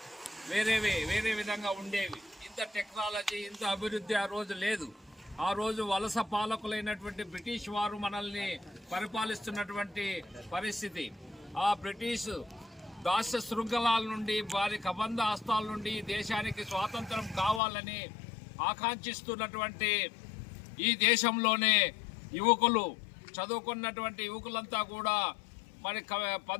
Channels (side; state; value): right; drops out; at 17.6 s